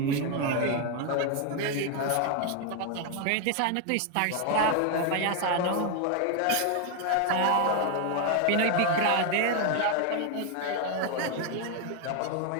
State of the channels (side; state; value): both; different; correlation 0.01